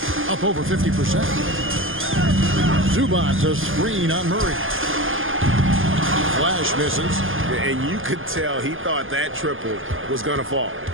Up over 50%. Zubac a screen on Murray. Flash misses. And you could tell he thought that triple was going to fall.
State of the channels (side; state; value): left; late; 0.59 ms